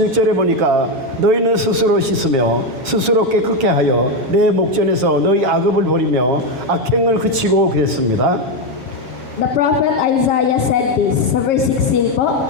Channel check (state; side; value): late; left; 7.3 ms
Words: 보니까 너희는 스스로 씻으며 스스로 깨끗게 하여 내 목전에서 너희 악업을 버리며 악행을 그치고 그랬습니다. The prophet Isaiah said this sa verse 16 po,